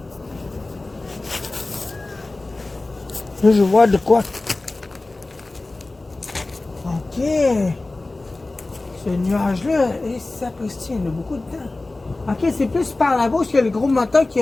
Là, je vois de quoi. Ok. Ce nuage-là, et ça il y en a beaucoup de temps. Ok, c'est plus par là-bas qu'il y a le gros moteur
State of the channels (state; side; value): quieter; right; 3.1 dB